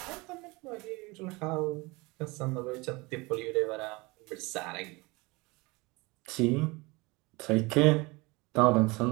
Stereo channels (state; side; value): quieter; left; 24.7 dB